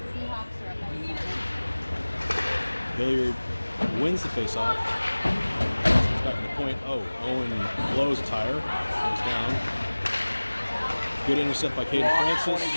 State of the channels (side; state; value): both; inverted; correlation -1.00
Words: Seahawks are up on Hilliard wins the face-off. He's back in the point. Oh, Owen blows a tire. Goes down. Good intercept by Caden Francis.